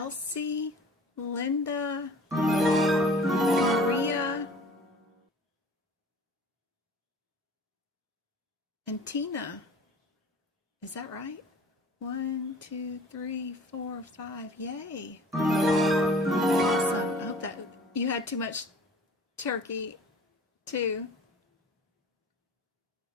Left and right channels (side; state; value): both; normal; correlation 0.46